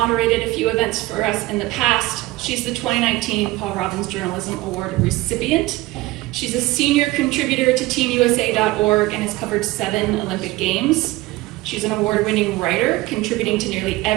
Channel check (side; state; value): left; quieter; 19.2 dB